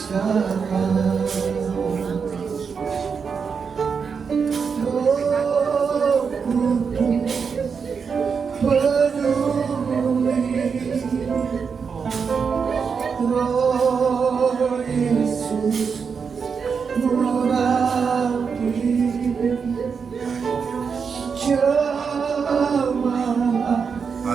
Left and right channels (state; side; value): quieter; left; 5.9 dB